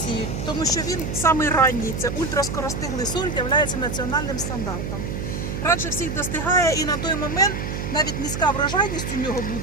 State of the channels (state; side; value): noise; right; hum, 4 dB below the sound